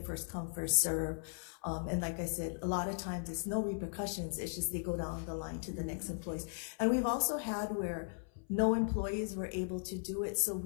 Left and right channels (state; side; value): silent; right; 53 dB below the other